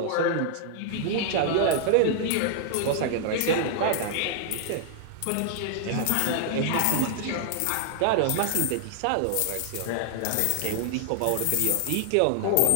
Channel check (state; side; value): different; both; correlation 0.00